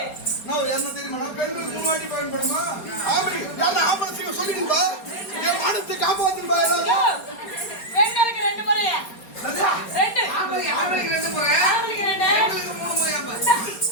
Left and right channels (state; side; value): late; right; 4.3 ms